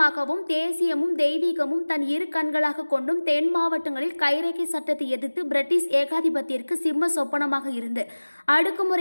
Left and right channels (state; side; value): inverted; both; correlation -1.00